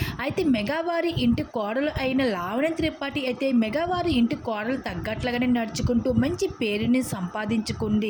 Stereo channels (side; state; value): both; identical; correlation 1.00